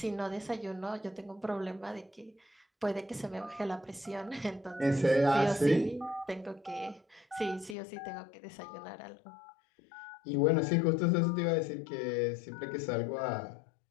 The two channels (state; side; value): drops out; right; at 7.8 s